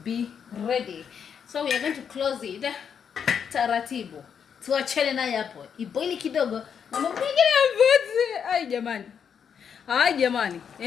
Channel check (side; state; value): right; quieter; 7.4 dB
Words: ready. So we are going to close it taratibu. Tuachane naye hapo. Iboili kidogo. Na mpigile mvuzi. Ai jamani.